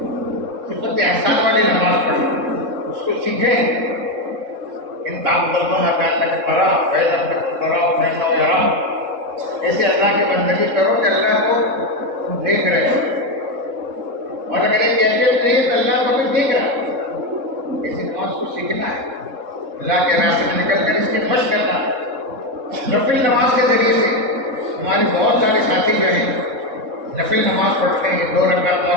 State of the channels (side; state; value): left; late; 3.7 ms